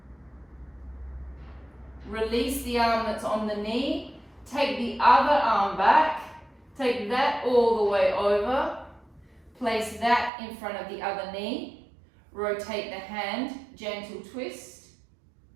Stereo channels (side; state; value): left; drops out; at 10.3 s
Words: Release the arm that's on the knee. Take the other arm back. Take that all the way over. Place that in front of the other knee. Rotate the hand, gentle twist.